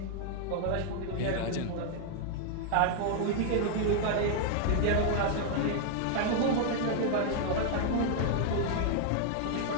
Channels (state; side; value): different; both; correlation 0.00